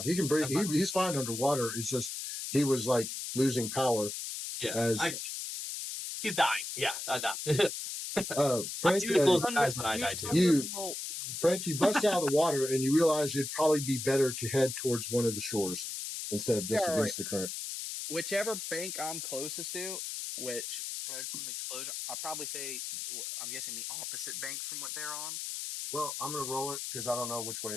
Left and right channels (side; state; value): left; noise; hiss, 5 dB below the sound